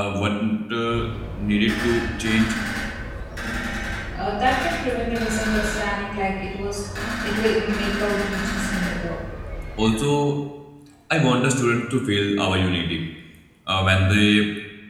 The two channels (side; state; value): both; identical; correlation 1.00